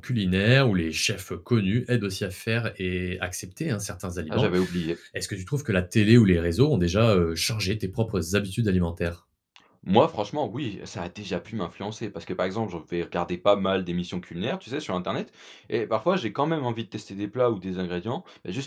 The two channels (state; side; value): identical; both; correlation 1.00